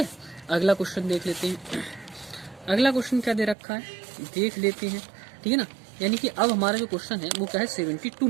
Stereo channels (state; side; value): drops out; left; at 3.6 s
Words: अगला क्वेश्चन देख लेते हैं। अगला क्वेश्चन क्या दे रखा है देख लेते हैं, ठीक है ना। यानी कि अब हमारा जो क्वेश्चन है वो क्या है 72